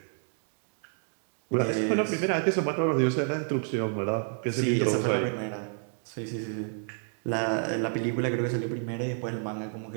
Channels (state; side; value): silent; left; 58 dB below the other